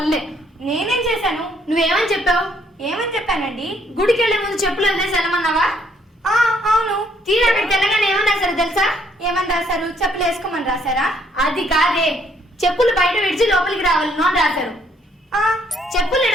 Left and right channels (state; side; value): normal; both; correlation 0.67